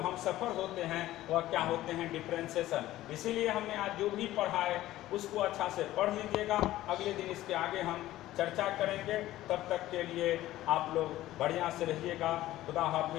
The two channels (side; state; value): right; quieter; 15.1 dB